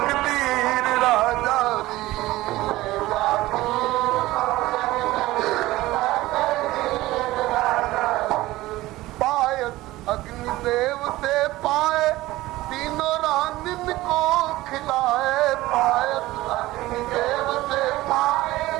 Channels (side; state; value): left; quieter; 17.7 dB